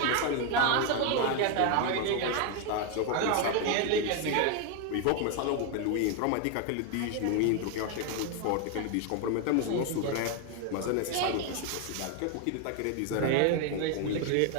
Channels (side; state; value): both; different; correlation 0.01